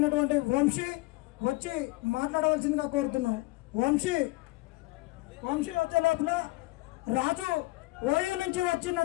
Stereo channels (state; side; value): quieter; right; 21.8 dB